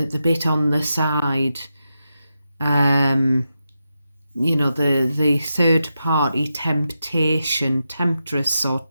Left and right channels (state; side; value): inverted; both; correlation -0.88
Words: bit on the side. You know, the third party temptation, temptress or